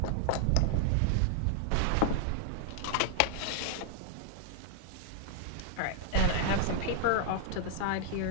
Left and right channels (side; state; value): both; different; correlation 0.00